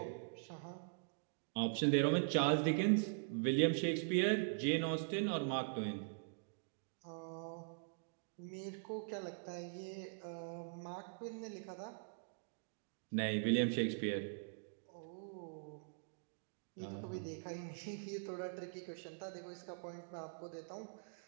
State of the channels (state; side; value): silent; left; digital silence